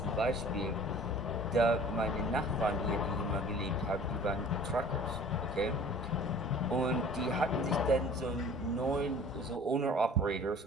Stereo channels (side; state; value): both; normal; correlation 0.46